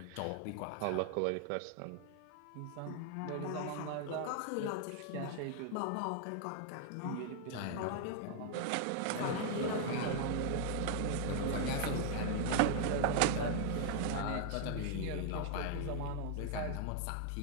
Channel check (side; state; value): both; different; correlation 0.00